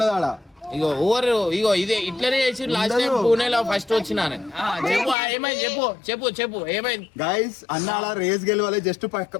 ఆడ. ఇగో ఓవర్ ఇగో ఇదే ఇట్లనే చేసి లాస్ట్ టైం పూణేలో ఫస్ట్ వచ్చినాను. చెప్పు ఏమైంది? చెప్పు చెప్పు చెప్పు ఏమైంది? గైస్ అన్న అలా రేస్ గెలవాలి, జస్ట్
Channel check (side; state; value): right; drops out; at 5.2 s